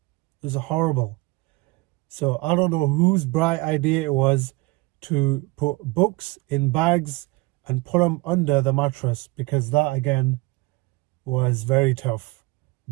It was horrible. So I don't know whose bright idea it was to put books in bags and put them under the mattress, because that again was very tough.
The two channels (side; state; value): left; quieter; 23.2 dB